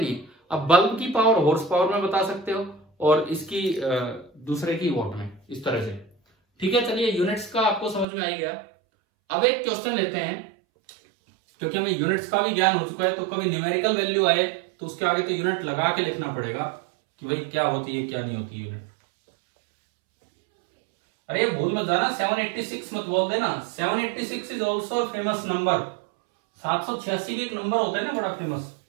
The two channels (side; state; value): left; drops out; at 8.1 s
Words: नहीं। अब बल्ब की पावर हॉर्स पावर में बता सकते हो और इसकी दूसरे की वॉट में, इस तरह से। ठीक है, चलिए यूनिट्स का आपको समझ में आ गया। अब एक क्वेश्चन लेते हैं, क्योंकि हमें यूनिट्स का भी ज्ञान हो चुका है, तो कभी न्यूमेरिकल वैल्यू आए तो उसके आगे तो यूनिट लगा के लिखना पड़ेगा कि भाई क्या होती है क्या नहीं होती है यूनिट। अरे भूल मत जाना, 786 मत बोल देना। 786 इज ऑल्सो फेमस नंबर। 786 भी एक नंबर होता है ना, बड़ा फेमस।